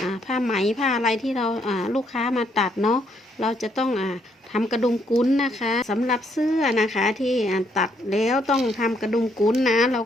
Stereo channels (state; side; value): normal; both; correlation 0.72